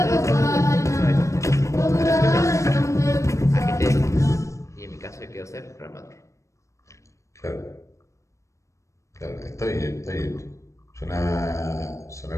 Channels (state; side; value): late; right; 0.15 ms